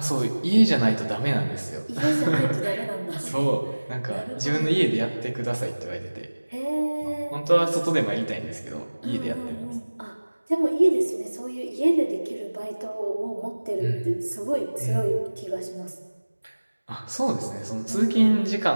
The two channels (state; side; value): inverted; both; correlation -1.00